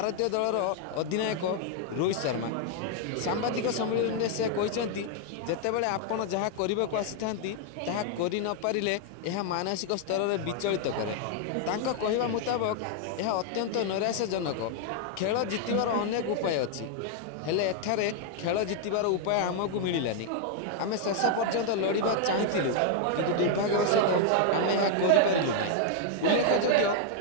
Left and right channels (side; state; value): both; different; correlation 0.00